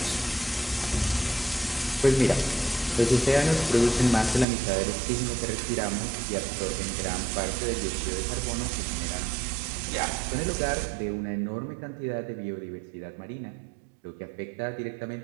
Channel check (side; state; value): left; drops out; at 4.5 s